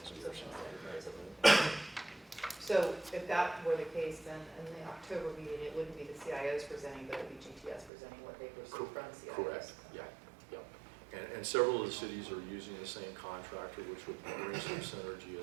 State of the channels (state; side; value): drops out; left; at 7.9 s